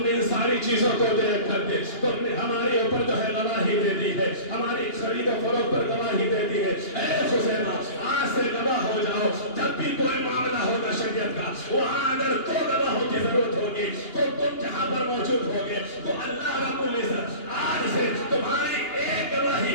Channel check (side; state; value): right; late; 2.8 ms